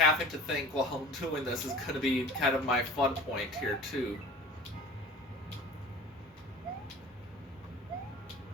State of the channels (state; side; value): normal; both; correlation 0.42